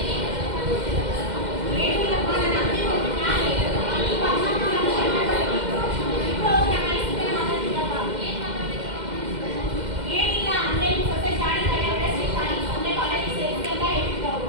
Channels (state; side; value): late; left; 2.1 ms